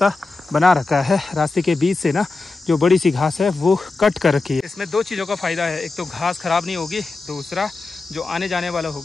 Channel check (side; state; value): right; quieter; 3.7 dB